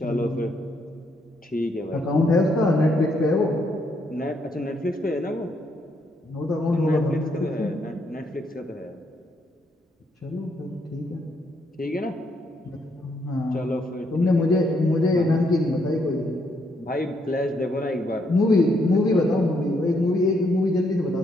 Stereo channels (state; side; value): normal; both; correlation 0.74